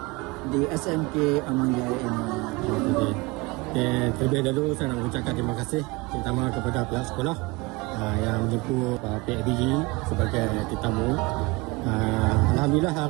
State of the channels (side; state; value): left; quieter; 24.3 dB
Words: di SMK Aman Jaya ini. Terlebih dahulu saya nak mengucapkan terima kasih terutama kepada pihak sekolah yang menjemput PABG sebagai tetamu. Alhamdulillah